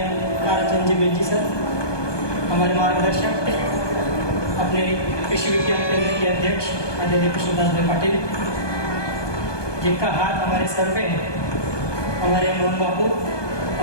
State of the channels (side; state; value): right; late; 1.2 ms